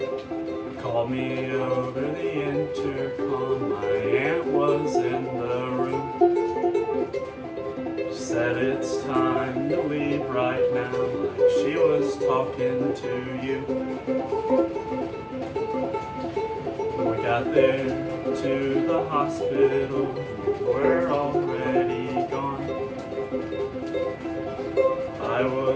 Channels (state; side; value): identical; both; correlation 1.00